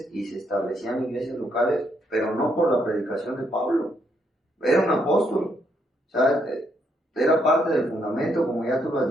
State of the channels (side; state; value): both; normal; correlation 0.75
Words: y se establecían iglesias locales, pero no por la predicación de Pablo. Era un apóstol, o sea, era parte del fundamento, como ya tú lo has